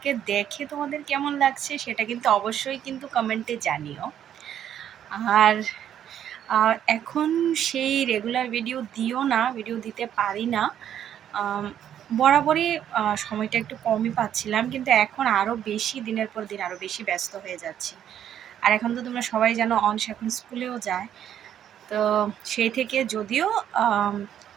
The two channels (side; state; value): left; quieter; 10.1 dB